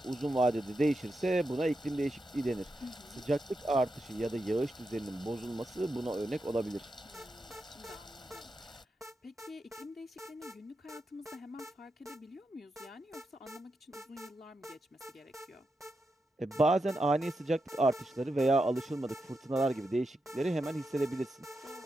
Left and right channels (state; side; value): normal; both; correlation 0.87